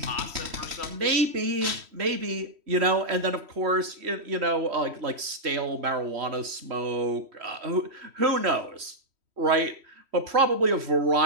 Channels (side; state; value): left; late; 3.1 ms